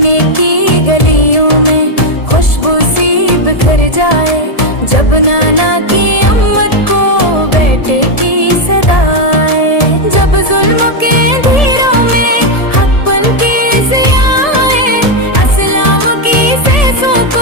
की गलियों में खुशबू सी बिखर जाए, जब नाना की अम्मत को बेटे की सदाए, जब जुल्म के धीरों में हक पल के ज़ियाए, अस्लाम की सेसों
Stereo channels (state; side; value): late; right; 1.7 ms